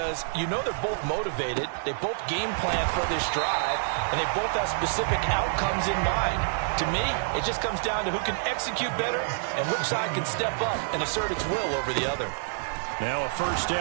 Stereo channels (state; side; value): silent; left; digital silence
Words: you know they're both motivated. They both game plan for this drive, and they both have specific outcomes in mind. To me, it just comes down to who can execute better and which side can step up and assert its will over the other. Now a first